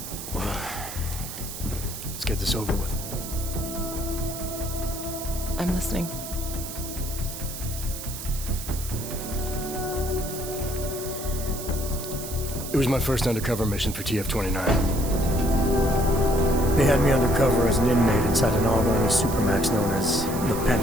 Well, let's get this over with. I'm listening. It was my first undercover mission for TF-29. They had me undercover as an inmate inside an AUG-only supermax known as the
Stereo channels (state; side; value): noise; right; hiss, 9 dB below the sound